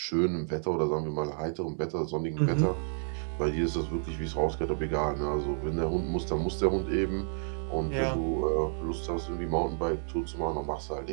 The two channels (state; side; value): silent; left; digital silence